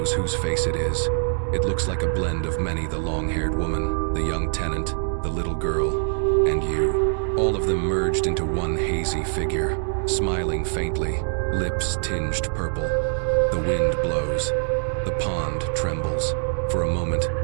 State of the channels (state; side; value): silent; left; digital silence